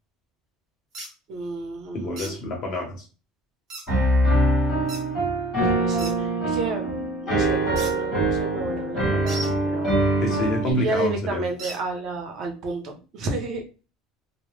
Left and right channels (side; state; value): both; normal; correlation 0.49